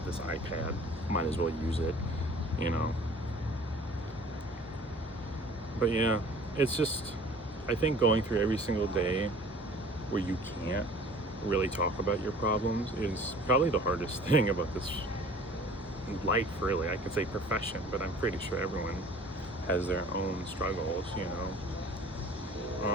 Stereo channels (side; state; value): both; normal; correlation 0.48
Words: this iPad, might as well use it, But yeah, it's just, I think going through every single day where you can't really talk about your problems is probably the hardest thing about this life, really. I could say profession, but I'm pretty sure everyone has their own struggles,